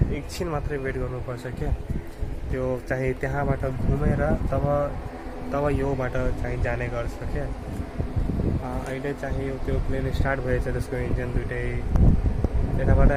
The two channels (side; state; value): both; identical; correlation 1.00